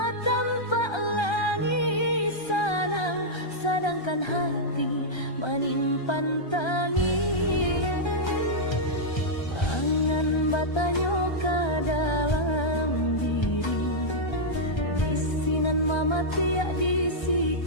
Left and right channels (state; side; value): late; right; 1.3 ms